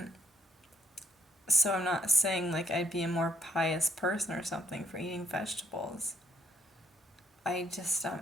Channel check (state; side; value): normal; both; correlation 0.69